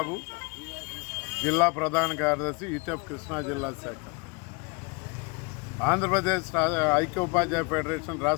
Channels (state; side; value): quieter; right; 30.5 dB